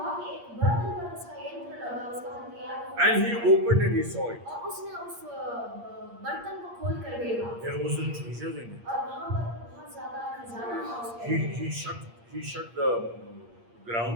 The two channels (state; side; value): late; left; 8.6 ms